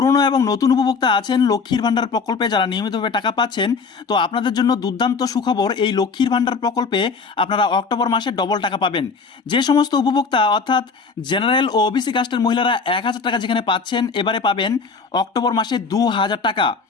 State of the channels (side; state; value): right; quieter; 4.9 dB